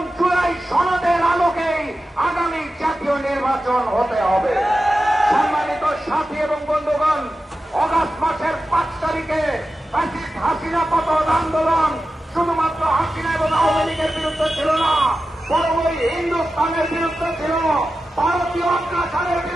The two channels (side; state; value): both; normal; correlation 0.92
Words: জুলাই সনদের আলোকেই আগামী জাতীয় নির্বাচন হতে হবে। সম্মানিত সাথী এবং বন্ধুগণ, অগাস্ট মাসের 5 তারিখে হাসিনা পতন আন্দোলন শুধুমাত্র হাসিনা এবং আওয়ামী লীগের বিরুদ্ধে ছিল না, বরং ওই হিন্দুস্তানের বিরুদ্ধে ছিল, ভারতীয় অত্যাচারের